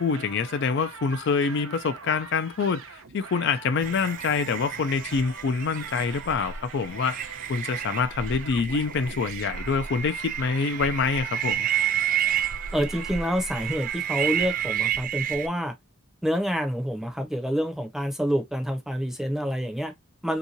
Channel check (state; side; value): normal; both; correlation 0.46